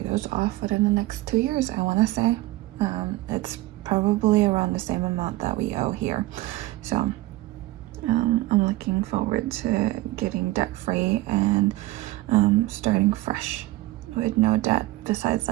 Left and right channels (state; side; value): quieter; left; 18.3 dB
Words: those off within the next 2 years. I want to say it's probably around the same amount that we owe here, so I'm looking forward to getting debt free and starting fresh with no debt besides